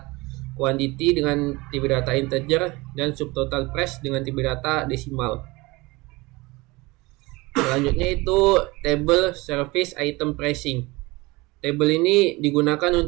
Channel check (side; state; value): left; quieter; 22.9 dB